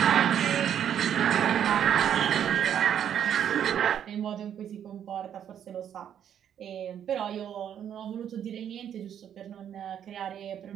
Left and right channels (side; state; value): left; quieter; 9.4 dB